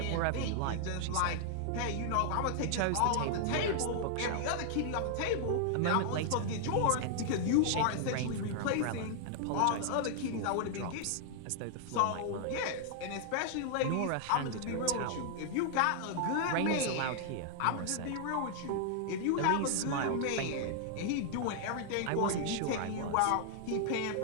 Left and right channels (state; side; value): different; both; correlation -0.01